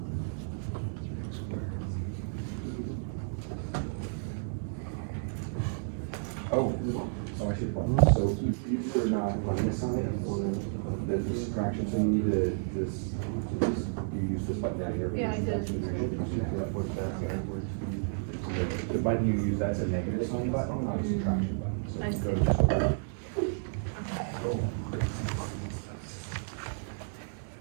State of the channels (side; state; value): left; silent; 57 dB below the other